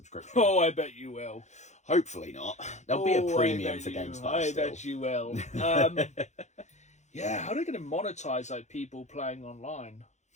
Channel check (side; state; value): right; late; 0.33 ms